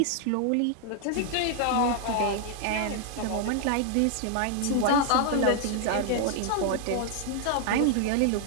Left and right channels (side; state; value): both; different; correlation 0.00